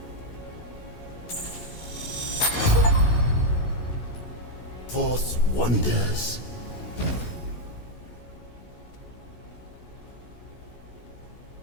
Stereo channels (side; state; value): right; late; 16 ms